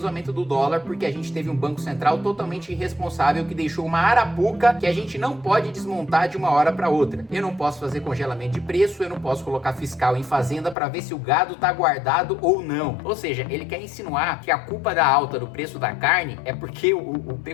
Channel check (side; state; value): right; drops out; at 10.8 s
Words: aumento do dólar porque a gente teve um Banco Central totalmente irresponsável que deixou uma arapuca que a gente não pode desmontar de uma hora para outra. Eu não posso fazer congelamento de preço, eu não posso colocar fiscal em fazenda para ver se o gado tá guardado ou não. Ou seja, ele quer insinuar que a culpa da alta do preço da carne é porque o